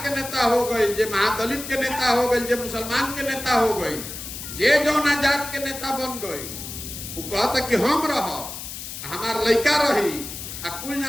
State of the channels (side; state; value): left; noise; hiss, 9 dB below the sound